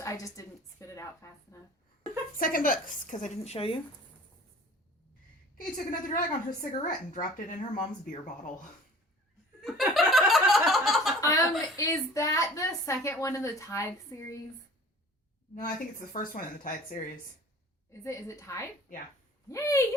just didn't spit it out fast enough. Second books, because I didn't show you. Kay took another drag on her cigarette and dropped it in her mom's beer bottle. Is that the second one in the Tithe series? No, I think it's the first one in the Tide series. Is it Tithe? Yeah. Yay!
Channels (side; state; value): both; normal; correlation 0.46